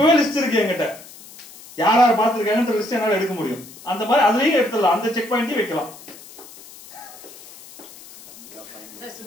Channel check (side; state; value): left; noise; hiss, 19 dB below the sound